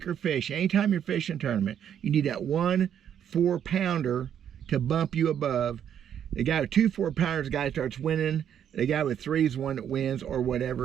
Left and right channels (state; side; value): quieter; left; 9.2 dB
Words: fish. Anytime you're fishing a tournament, you need that 1 4-pounder to bump you above. The guy with 2 4-pounders, the guy starts winning. The guy with 3 is the one that wins, or